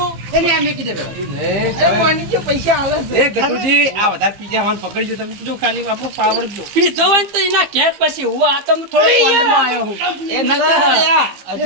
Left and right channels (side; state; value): left; late; 15 ms